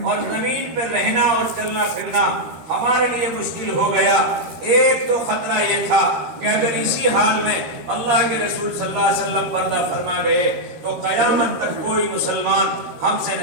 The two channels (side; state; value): left; late; 13 ms